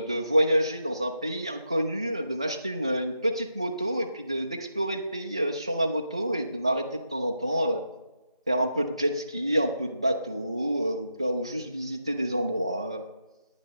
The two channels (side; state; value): both; inverted; correlation -0.83